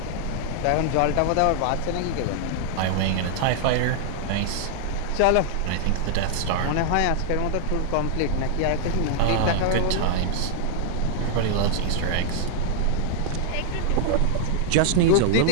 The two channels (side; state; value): both; different; correlation -0.01